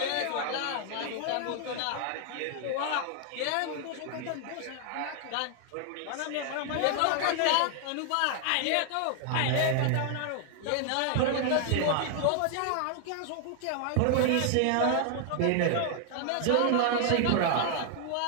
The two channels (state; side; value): different; both; correlation 0.00